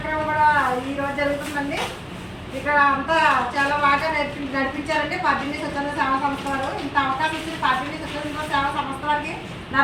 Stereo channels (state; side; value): identical; both; correlation 1.00